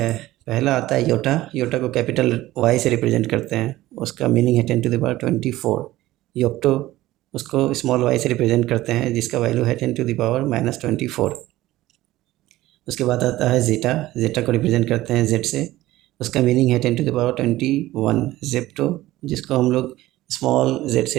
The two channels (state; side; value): quieter; left; 16.4 dB